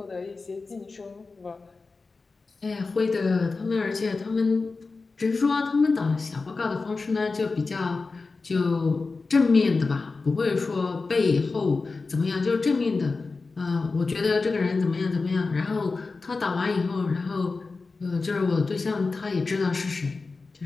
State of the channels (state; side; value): quieter; right; 4.0 dB